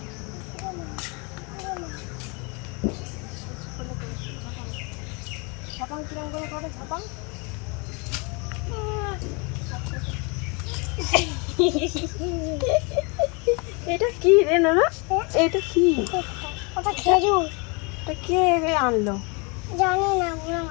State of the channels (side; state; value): right; quieter; 31.1 dB